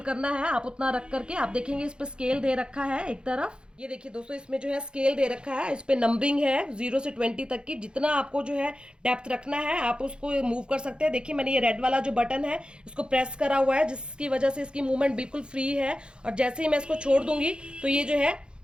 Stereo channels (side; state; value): left; late; 0.052 ms